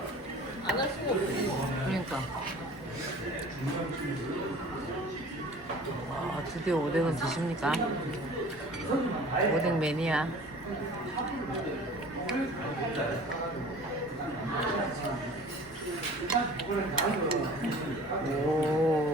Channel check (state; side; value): normal; both; correlation 0.45